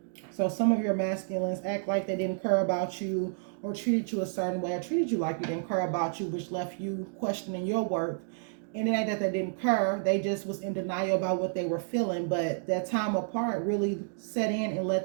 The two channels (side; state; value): left; silent; digital silence